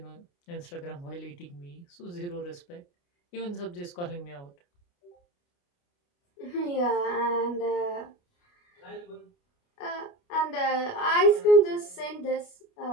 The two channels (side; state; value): right; late; 29 ms